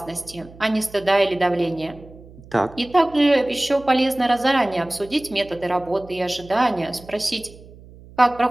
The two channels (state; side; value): noise; right; hum, 21 dB below the sound